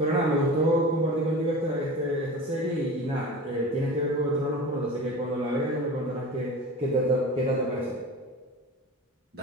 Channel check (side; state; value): both; normal; correlation 0.34